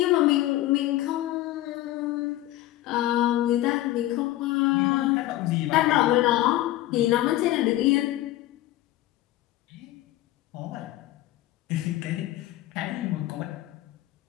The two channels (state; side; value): quieter; right; 15.5 dB